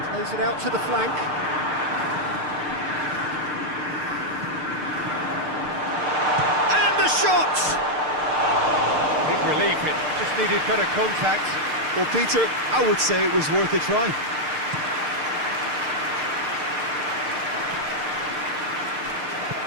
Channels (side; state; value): left; late; 6.6 ms